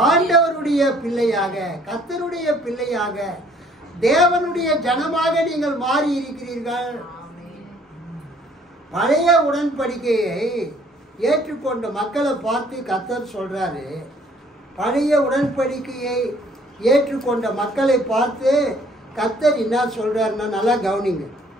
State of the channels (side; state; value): both; normal; correlation 0.60